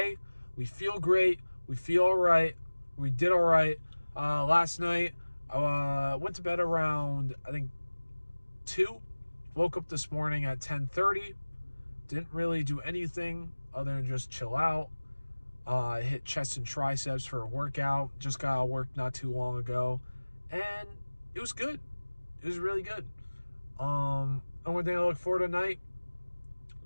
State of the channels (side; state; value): both; inverted; correlation -1.00